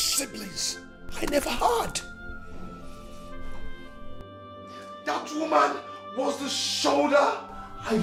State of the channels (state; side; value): identical; both; correlation 1.00